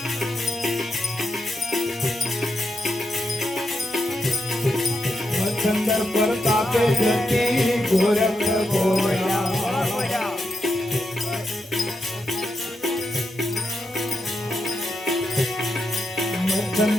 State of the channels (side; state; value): both; normal; correlation 0.85